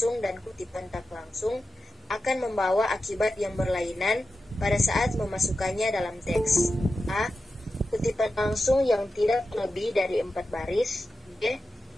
dan kutipan tak langsung akan membawa akibat yang berlainan pada saat memasukkannya dalam teks. A. Kutipan langsung yang tidak lebih dari 4 baris. B.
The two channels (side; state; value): both; normal; correlation 0.91